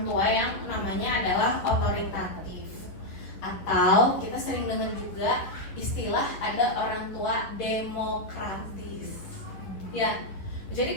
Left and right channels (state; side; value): late; right; 10 ms